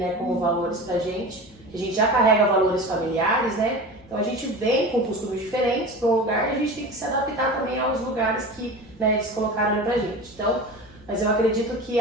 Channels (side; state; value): left; noise; hum, 27 dB below the sound